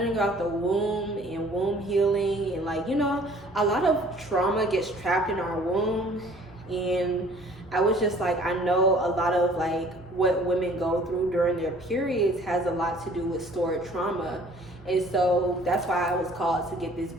about the womb and womb healing. And, like, you know, a lot of trauma gets trapped in our womb. And I was just like, I know a lot of, like, what women go through during their periods has a lot to do with stored trauma. And so that's why I was called to get this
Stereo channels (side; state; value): both; normal; correlation 0.54